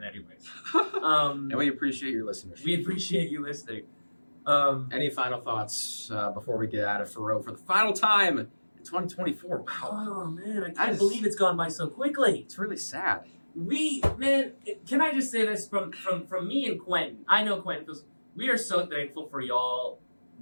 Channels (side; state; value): both; inverted; correlation -1.00